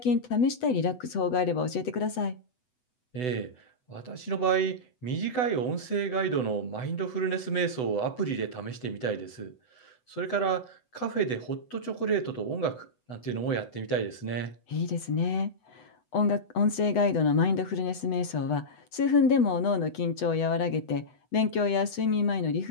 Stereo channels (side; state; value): right; late; 8.0 ms